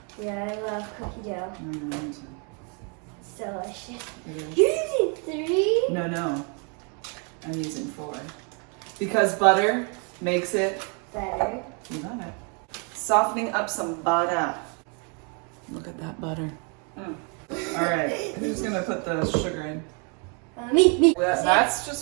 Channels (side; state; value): left; quieter; 36.9 dB